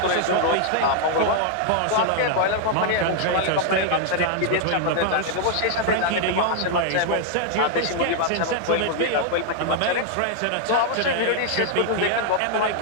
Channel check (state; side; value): different; both; correlation 0.00